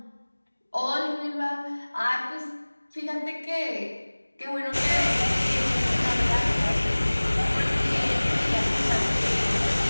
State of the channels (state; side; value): inverted; both; correlation -1.00